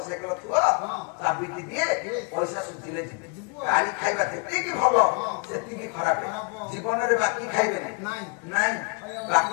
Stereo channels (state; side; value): quieter; right; 34.1 dB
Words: ଥିବ ଚାବିଟି ଦିଏ ପଇସା ସୁଝିଲେ ଯିବେ। ଗାଡି ଖାଇବା ଯେତିକି ଭଲ ସେତିକି ଖରାପ। ଜୀବନରେ ବାକି ଖାଇବେନି ନାଇଁ,